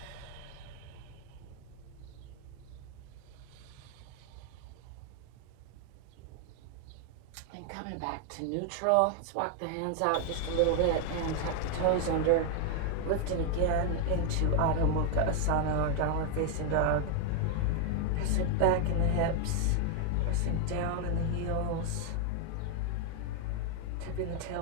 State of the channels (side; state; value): both; different; correlation 0.01